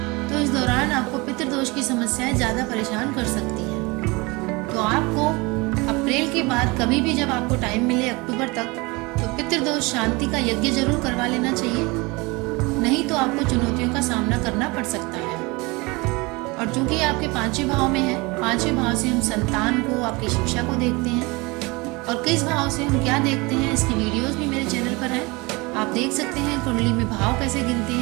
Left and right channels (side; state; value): left; quieter; 25.4 dB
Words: तो इस दौरान आपको पितृ दोष की समस्याएं ज्यादा परेशान कर सकती हैं। तो आपको अप्रैल के बाद कभी भी जब आपको टाइम मिले अक्टूबर तक, तो पितृदोष शांति का यज्ञ जरूर करवा लेना चाहिए, नहीं तो आपको चुनौतियों का सामना करना पड़ सकता है। और चूंकि आपके 5वें भाव में है, 5वें भाव से हम संतान को, आपकी शिक्षा को देखते हैं, और किस भाव से हम क्या देखते हैं इसकी वीडियोस भी मेरे चैनल पर है, आप देख सकते हैं कुंडली में भाव कैसे गिनते